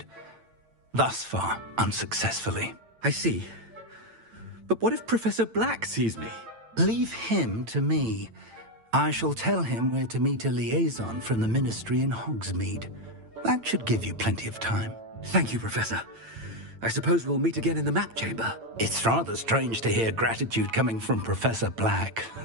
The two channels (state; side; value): late; left; 8.9 ms